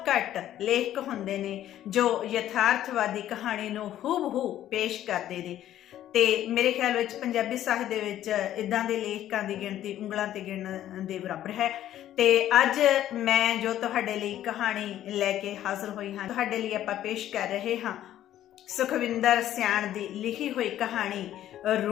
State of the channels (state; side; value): quieter; right; 12.2 dB